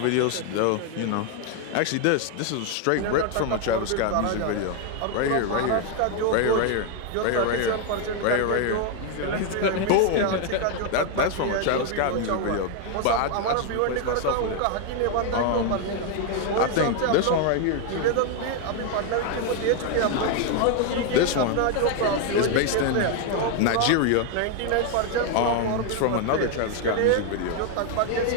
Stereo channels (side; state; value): both; different; correlation 0.01